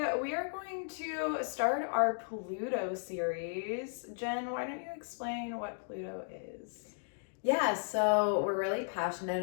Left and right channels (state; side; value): silent; right; digital silence